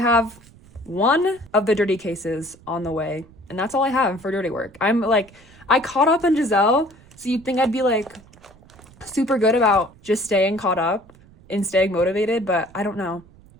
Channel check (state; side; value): noise; right; rumble, 25 dB below the sound